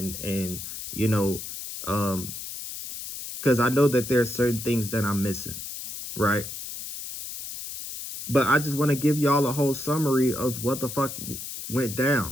you know, because I know that there are certain things that I'm missing, right? But I just want to give y'all a whole summary of what the fuck went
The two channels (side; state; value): left; noise; hiss, 8 dB below the sound